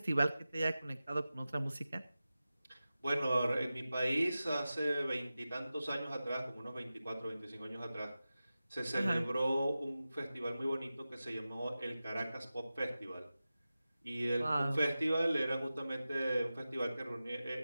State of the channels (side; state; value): both; inverted; correlation -0.94